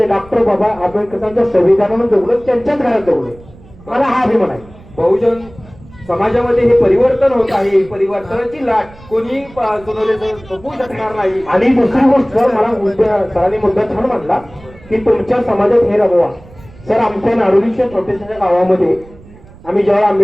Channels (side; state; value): right; noise; rumble, 22 dB below the sound